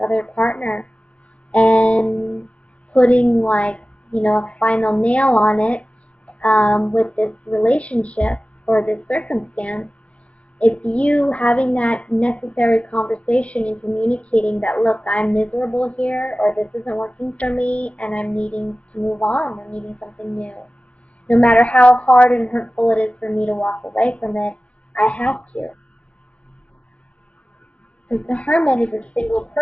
other partner, and putting a final nail on it with this relationship or this circumstance. It's you having that necessary conversation and communicating that, look, I'm miserable here, or this isn't working for me, and I'm needing to move on. I'm needing something new. No matter how hard and hurtful it is for me to walk away from it, I have to. Because the Hermit is a single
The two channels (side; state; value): right; late; 0.062 ms